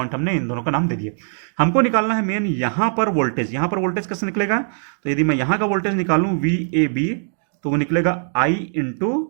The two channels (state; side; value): silent; left; digital silence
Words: हमने इन दोनों का नाम दे दिया। हमको निकालना है मेन यहां पर वोल्टेज। यहां पर वोल्टेज कैसे निकलेगा, तो यदि मैं यहां का वोल्टेज निकालूं वी ए बी, तो वो निकलेगा I into